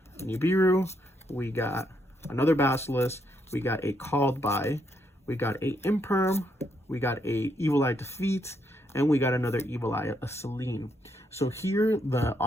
Nibiru, we got another Basilisk, we got a Called By, we got a Imperm, we got a Evil Eye Defeat, and we got another Evil Eye, a Selene. So here, the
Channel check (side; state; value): both; normal; correlation 0.76